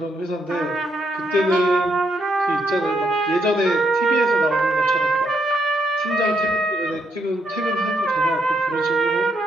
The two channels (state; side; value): normal; both; correlation 0.75